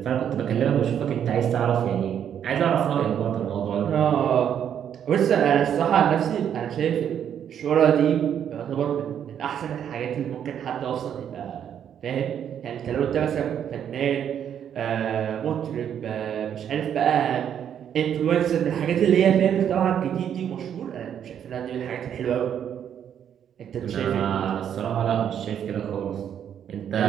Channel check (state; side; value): quieter; left; 9.1 dB